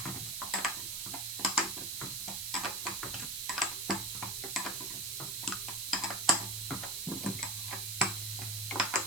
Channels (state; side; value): noise; right; hiss, 2 dB below the sound